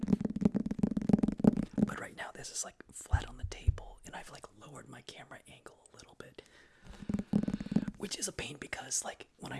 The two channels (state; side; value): identical; both; correlation 1.00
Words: But right now this is like flat on the table, and I've like lowered my camera angle a little bit. Which is a pain because like when